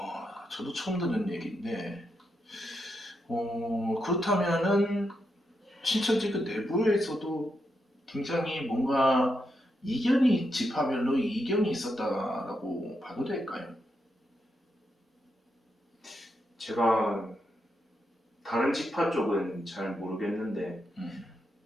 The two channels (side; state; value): both; normal; correlation 0.83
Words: 그렇다면은 신천지 그 내부에서도 굉장히 뭔가 지파별로 이견이 있었다라고 봐도 될까요? 제가 다른 지파 쪽은 잘 모르겠는데, 음,